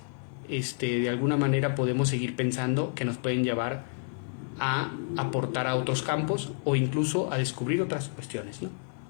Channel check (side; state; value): right; silent; 58 dB below the other